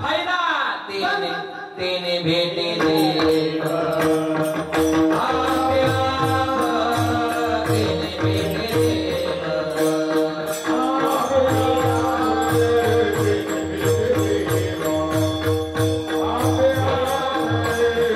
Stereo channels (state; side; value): identical; both; correlation 1.00